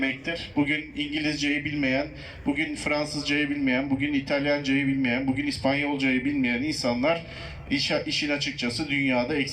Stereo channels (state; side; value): identical; both; correlation 1.00